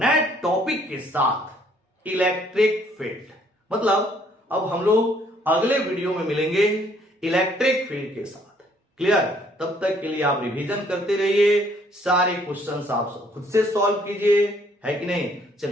टॉपिक के साथ इलेक्ट्रिक फील्ड। मतलब अब हम लोग अगले वीडियो में मिलेंगे इलेक्ट्रिक फील्ड के साथ। क्लियर? तब तक के लिए आप रिवीजन करते रहिए, सारे क्वेश्चंस आप खुद से सॉल्व कीजिए, है कि नहीं?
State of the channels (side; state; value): both; normal; correlation 0.64